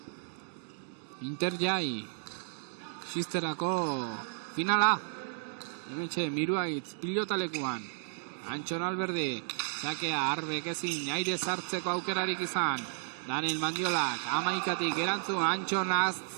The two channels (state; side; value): silent; left; digital silence